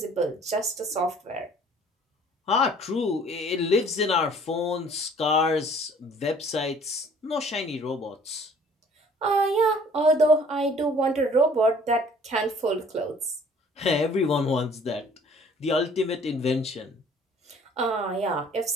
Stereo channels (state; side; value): normal; both; correlation 0.54